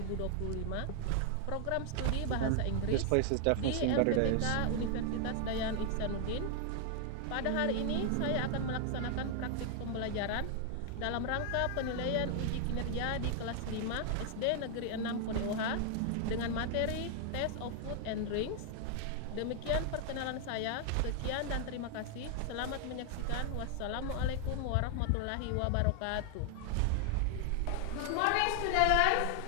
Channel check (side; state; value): both; different; correlation 0.00